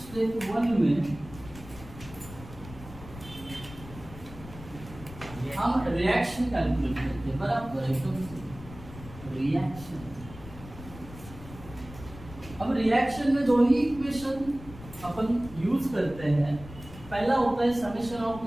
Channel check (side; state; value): left; noise; rumble, 15 dB below the sound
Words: 1 में हम रिएक्शन कैलकुलेट करते हैं, बराबर एकदम रिएक्शन। अब रिएक्शन में 2 ही इक्वेशन अपन यूज करते हैं। पहला होता है summation of